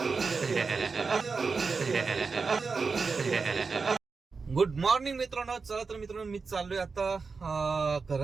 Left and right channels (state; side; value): quieter; left; 4.7 dB